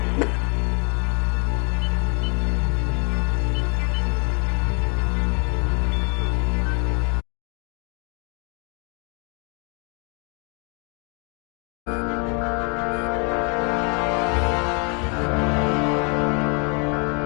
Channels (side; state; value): right; quieter; 35.7 dB